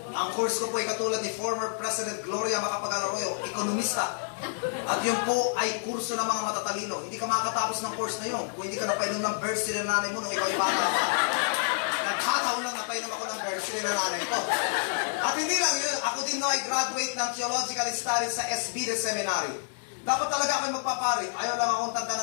Ang course ko po ay katulad ni former President Gloria Macapagal-Arroyo, ekonomista. At yun po ay kurso ng mga matatalino. Hindi ka makakatapos ng course na yun kung hindi ka napainom ng bursary ng nanay mo nung ikaw ay bata pa. Nagkataon lang napainom ako ng bursary ng nanay ko. At hindi lang yun, ako din ay graduate ng Theological Studies sa SB Seminary. Dapat talaga ako magpapari. Ayaw lang akong tanda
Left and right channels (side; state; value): right; silent; digital silence